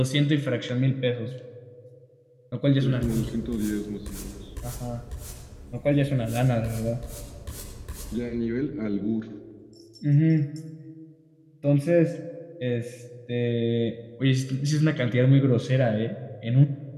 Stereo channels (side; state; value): both; identical; correlation 1.00